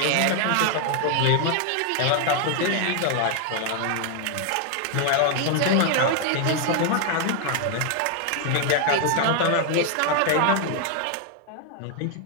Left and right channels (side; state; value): both; different; correlation 0.00